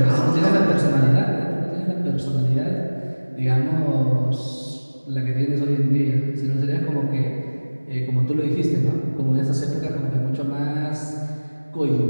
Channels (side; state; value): both; inverted; correlation -1.00